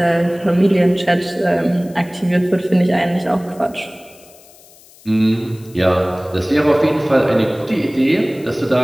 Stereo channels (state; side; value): noise; left; hiss, 25 dB below the sound